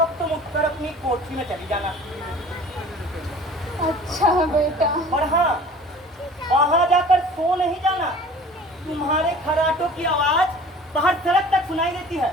तुम उठकर अपनी कोठरी में चली जाना। अच्छा बेटा। और हाँ, वहाँ जाकर सो नहीं जाना। तुम्हारे खराटों की आवाज बाहर सड़क तक सुनाई देती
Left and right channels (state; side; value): normal; both; correlation 0.45